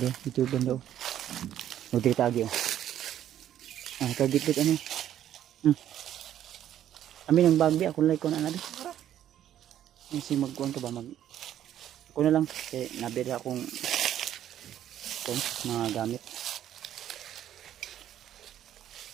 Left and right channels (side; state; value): left; quieter; 11.1 dB